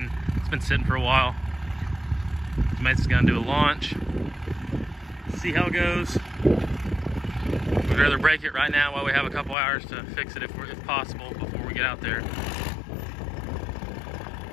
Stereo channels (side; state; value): right; drops out; at 9.6 s